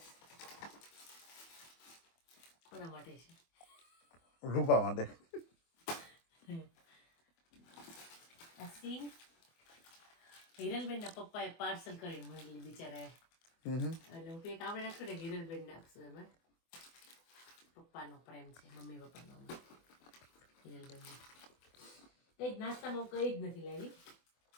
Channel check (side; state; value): right; late; 24 ms